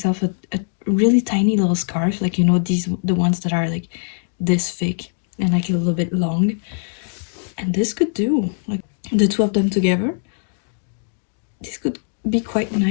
a really tiny little scarf, like, you know, the ones that are like this thick and like a little bit long. And this could do, like the two of them together. This could be quite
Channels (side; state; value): right; silent; digital silence